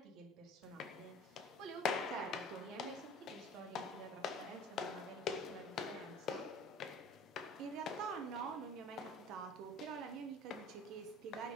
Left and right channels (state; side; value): normal; both; correlation 0.44